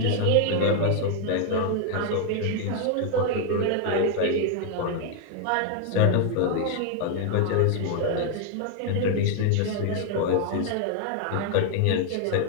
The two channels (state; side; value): different; both; correlation 0.00